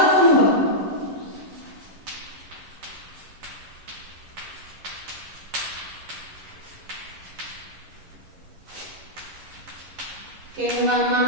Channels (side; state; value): left; late; 11 ms